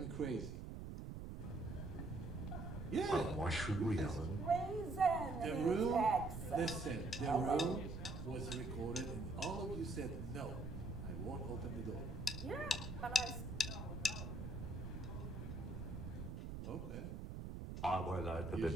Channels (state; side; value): noise; right; rumble, 7 dB below the sound